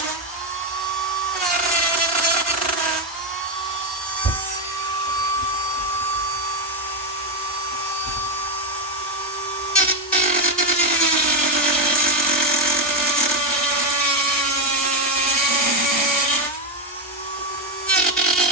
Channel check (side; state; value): both; normal; correlation 0.07